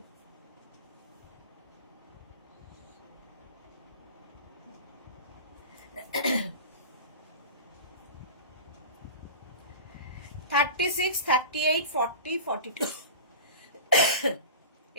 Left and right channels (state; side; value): inverted; both; correlation -0.34